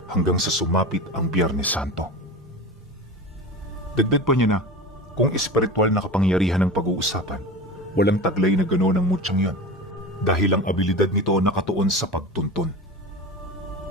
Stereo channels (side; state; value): both; normal; correlation 0.30